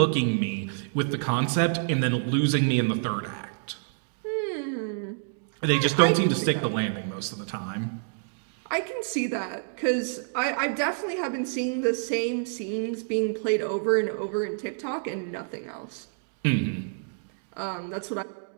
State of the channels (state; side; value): silent; left; digital silence